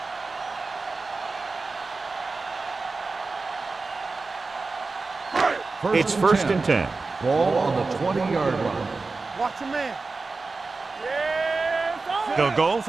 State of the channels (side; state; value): left; quieter; 3.9 dB